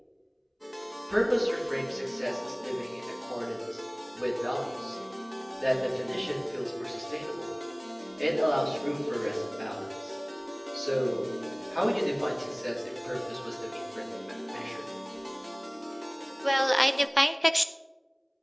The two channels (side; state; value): both; identical; correlation 1.00